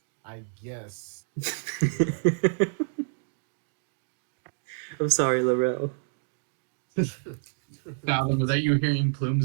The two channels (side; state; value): left; silent; digital silence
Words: I guess. I'm sorry, Laurel. Fathom, was that you hearing